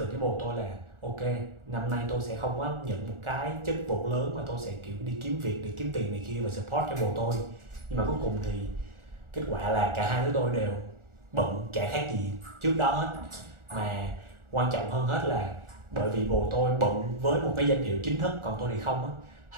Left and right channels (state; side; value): late; left; 1.4 ms